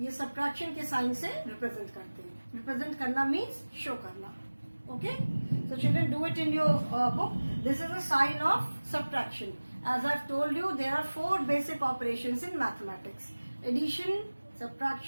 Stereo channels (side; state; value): both; inverted; correlation -1.00